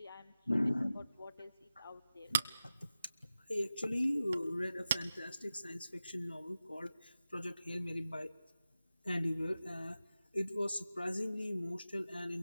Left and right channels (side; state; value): both; inverted; correlation -0.94